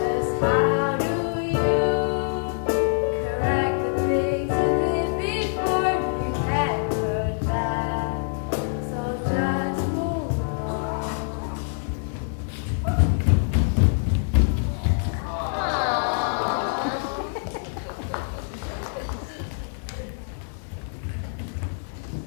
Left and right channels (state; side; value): silent; right; 62 dB below the other